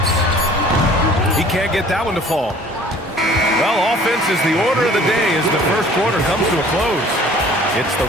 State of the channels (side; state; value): both; normal; correlation 0.50